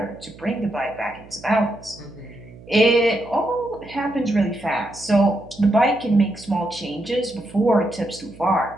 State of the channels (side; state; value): right; noise; hum, 20 dB below the sound